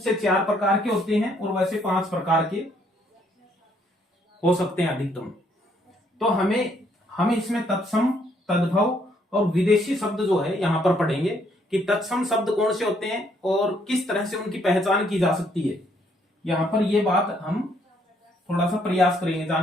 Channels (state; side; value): normal; both; correlation 0.69